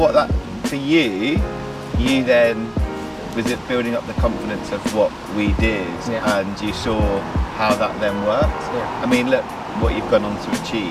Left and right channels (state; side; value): identical; both; correlation 1.00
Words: that for you then was it building up the confidence of what we did, and you saw how that then worked. Yeah. I mean, look what you've gone on to